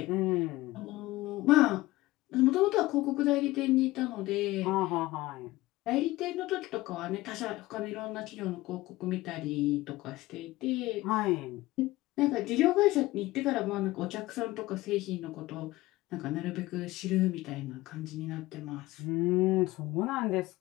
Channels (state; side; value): quieter; right; 18.5 dB